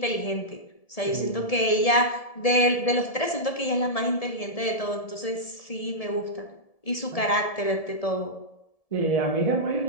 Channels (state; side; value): late; right; 1.7 ms